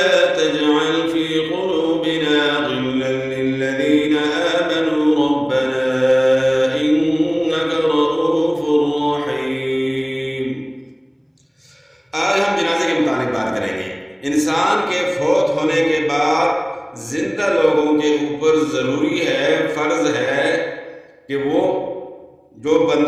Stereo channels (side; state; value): both; identical; correlation 1.00